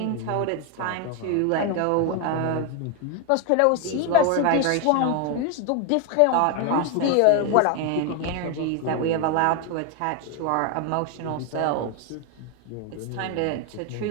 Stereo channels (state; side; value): different; both; correlation 0.01